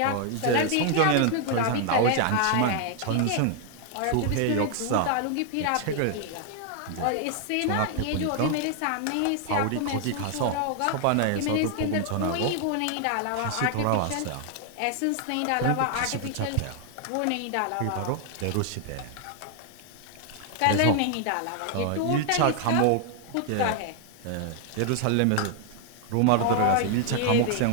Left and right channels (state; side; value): different; both; correlation 0.00